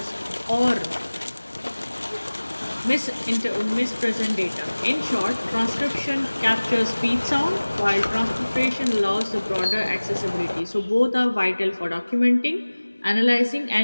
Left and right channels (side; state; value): both; inverted; correlation -1.00